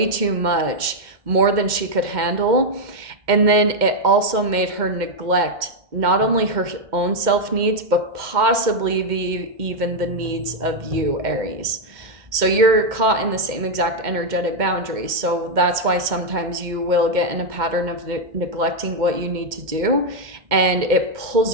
too much, more than she could handle. And then it also made her neglect not only her own self needs, but possibly even the needs of you, Aries. So you're caught in the same exact energetic boundary. So that's why sometimes you will get in a pattern of neglecting what you need to do, and it pulls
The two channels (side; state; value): left; late; 2.1 ms